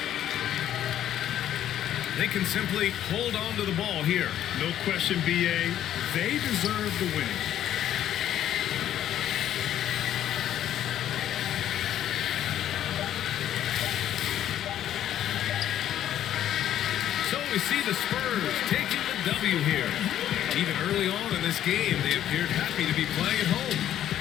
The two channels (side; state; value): right; quieter; 11.3 dB